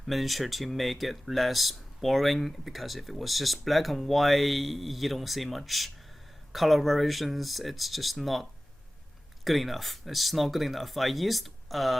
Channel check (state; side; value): normal; both; correlation 0.97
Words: miniature to make it less boring, because if it was just black and white, you don't see much color variations. It's just not good enough. I used